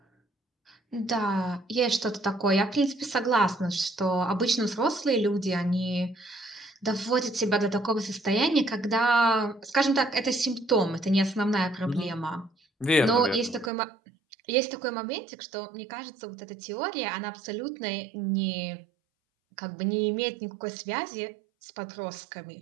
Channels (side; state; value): left; drops out; at 13.7 s